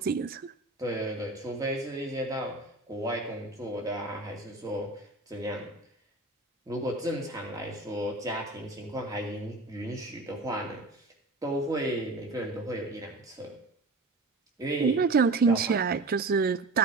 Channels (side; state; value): left; quieter; 3.1 dB